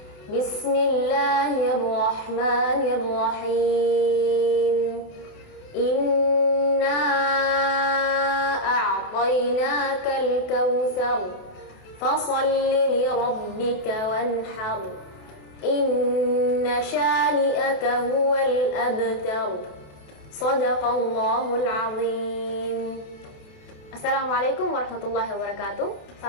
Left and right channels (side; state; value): right; late; 28 ms